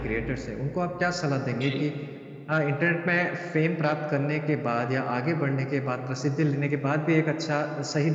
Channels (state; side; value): identical; both; correlation 1.00